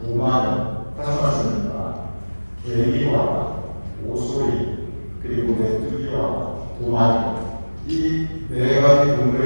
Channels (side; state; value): both; inverted; correlation -1.00